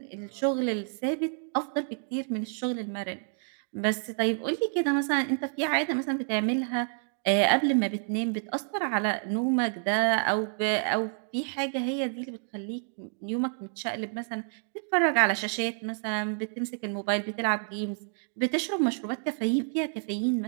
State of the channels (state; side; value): silent; left; 59 dB below the other